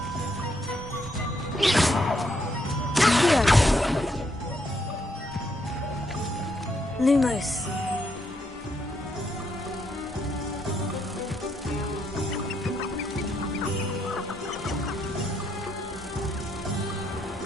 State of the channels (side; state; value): both; normal; correlation 0.76